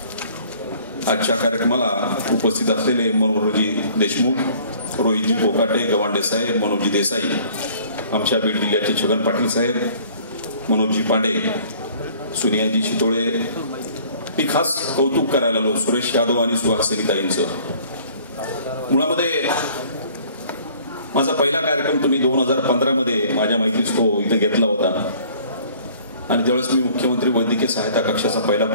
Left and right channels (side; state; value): both; inverted; correlation -0.54